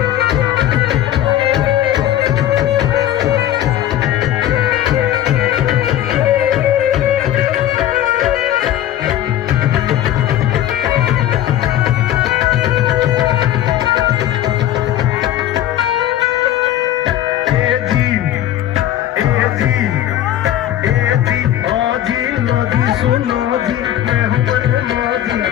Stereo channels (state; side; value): quieter; right; 12.2 dB